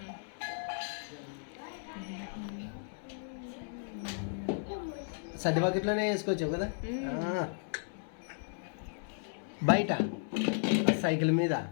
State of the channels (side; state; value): right; silent; 55 dB below the other